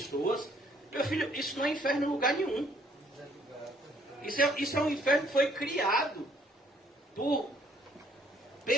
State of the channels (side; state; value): both; normal; correlation 0.63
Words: Meu filho, isso não é inferno em lugar nenhum. Isso é um inferno que foi criado por